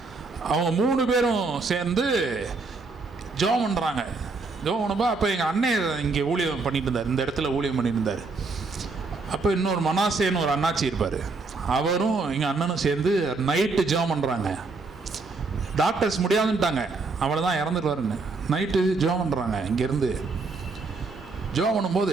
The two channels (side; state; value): left; quieter; 3.9 dB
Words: அவங்க 3 பேரும் சேர்ந்து ஜெபம் பண்ணுறாங்க. ஜெபம் பண்ணப்போ அப்போ எங்கள் அண்ணன் இங்கே ஊழியம் பண்ணிட்டு இருந்தார், இந்த இடத்துல ஊழியம் பண்ணிட்டு இருந்தார். அப்போ இன்னொரு மனாசேன்னு ஒரு அண்ணாச்சி இருப்பார், அவரும் எங்கள் அண்ணனும் சேர்ந்து நைட்டு ஜெபம் பண்ணுறாங்க. டாக்டர்ஸ் முடியாதுன்ட்டாங்க, அவ்வளோதான் இறந்துடுவாருன்னு. நைட்டு ஜெபம் பண்ணுறாங்க. இங்கேருந்து ஜெபம்